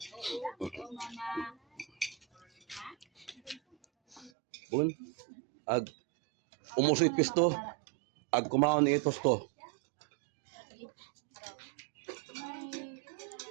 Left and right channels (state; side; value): drops out; left; at 4.3 s